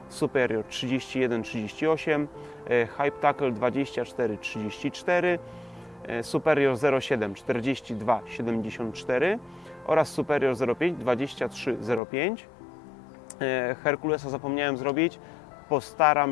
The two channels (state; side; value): drops out; right; at 12.0 s